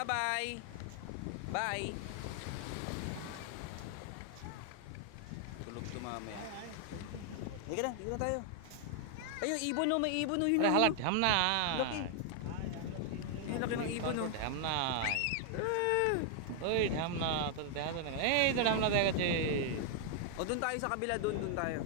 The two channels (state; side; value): different; both; correlation 0.00